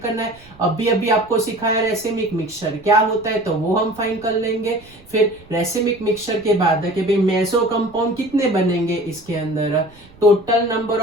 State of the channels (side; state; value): right; noise; rumble, 25 dB below the sound